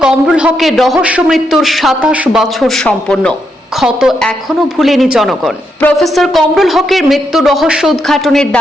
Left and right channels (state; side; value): normal; both; correlation 0.80